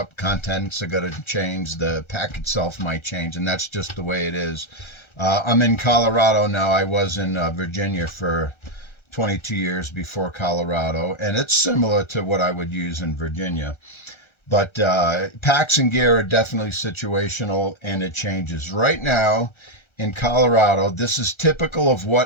Contents are going to change. The pack itself might change, and that's just the way it is. I'm in Colorado now. I was in Virginia for 22 years before Colorado, and it's similar to what I would use in Virginia. But packs and gear are definitely situational, and it changes. Right now, in Colorado, this is typical of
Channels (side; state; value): right; late; 1.3 ms